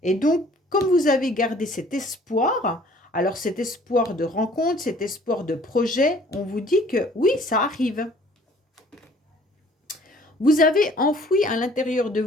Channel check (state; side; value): normal; both; correlation 0.55